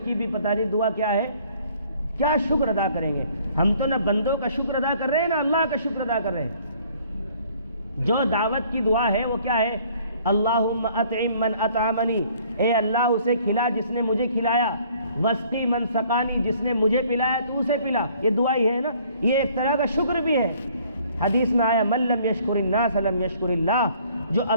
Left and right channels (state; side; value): inverted; both; correlation -0.58